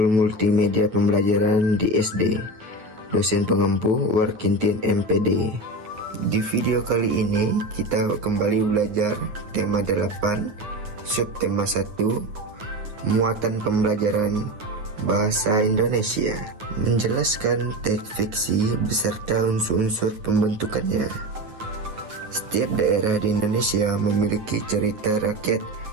Multimedia Pembelajaran di SD, dosen pengampu Warkintin MPD. Di video kali ini kita kembali belajar tema 8, subtema 1, muatan pembelajaran bahasa Indonesia, menjelaskan teks fiksi beserta unsur-unsur pembentukannya. Setiap daerah di Indonesia memiliki cerita rakyat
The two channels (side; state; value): left; late; 9.5 ms